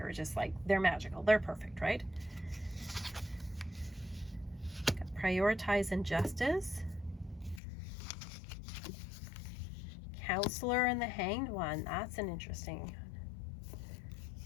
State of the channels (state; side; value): drops out; right; at 7.6 s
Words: are just like, they're magical. They're perfect, right? Prioritize Injustice. Counselor and the Hanged One. That's an interesting.